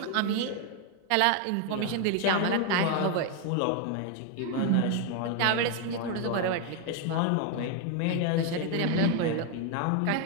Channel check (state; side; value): different; both; correlation 0.01